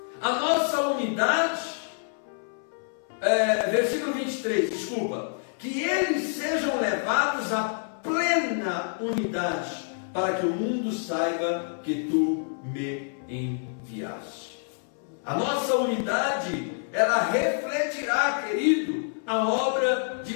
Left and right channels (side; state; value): right; silent; 60 dB below the other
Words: a nossa unidade, versículo 23, desculpa, que eles sejam levados à plena unidade, para que o mundo saiba que tu me enviaste. A nossa unidade, ela refletirá, querido, a obra de